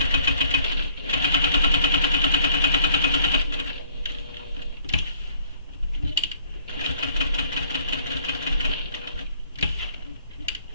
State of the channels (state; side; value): inverted; both; correlation -0.60